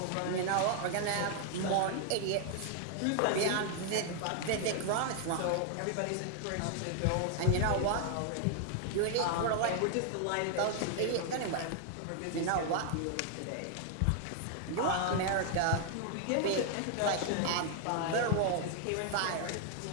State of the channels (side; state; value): both; different; correlation 0.00